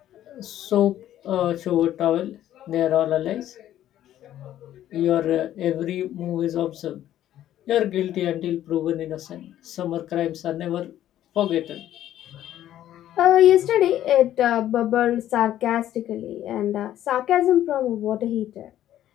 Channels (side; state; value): right; quieter; 12.2 dB